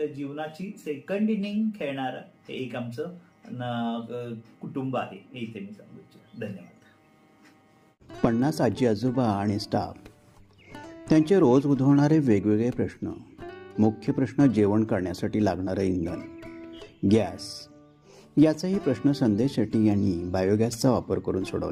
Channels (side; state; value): both; identical; correlation 1.00